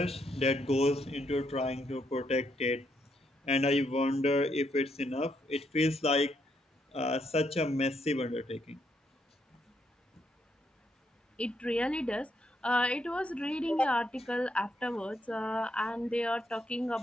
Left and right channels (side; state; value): both; normal; correlation 0.76